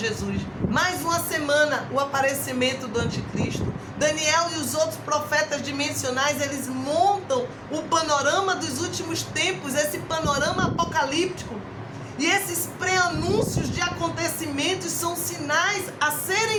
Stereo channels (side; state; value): both; identical; correlation 1.00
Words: mais uma semana, o aparecimento do anticristo. Daniel e os outros profetas dimensionais, eles montam o panorama dos últimos tempos, esse panorama apocalíptico. E esses pré-anúncios de acontecimentos são sinais a